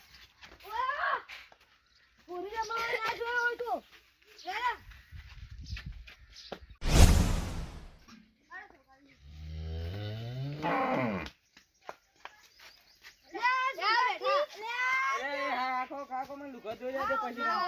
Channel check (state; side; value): identical; both; correlation 1.00